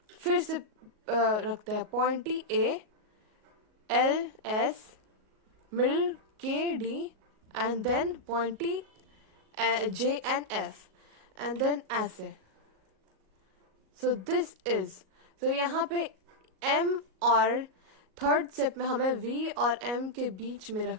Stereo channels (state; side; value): late; left; 38 ms